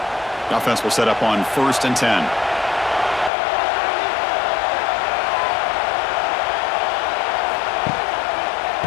Offense will set up on 1st and 10.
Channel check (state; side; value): drops out; right; at 3.3 s